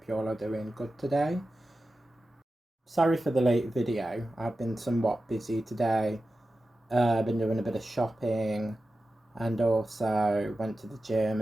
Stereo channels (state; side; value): normal; both; correlation 0.93